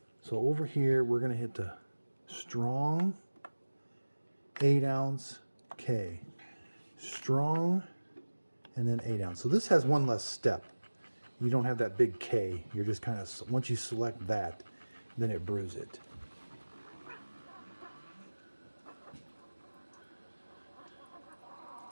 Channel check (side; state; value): both; inverted; correlation -1.00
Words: so over here, we're going to hit the strong 8 ounce K. Strong, and then 8 ounce. So this has one less step. You don't have that big K. You're just kind of, once you select that, then it brews it.